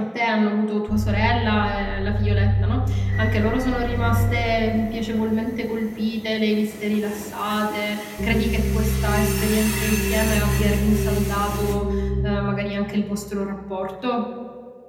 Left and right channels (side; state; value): both; identical; correlation 1.00